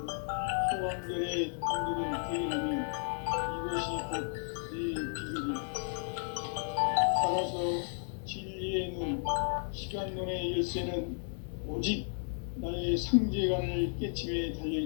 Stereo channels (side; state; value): right; silent; 55 dB below the other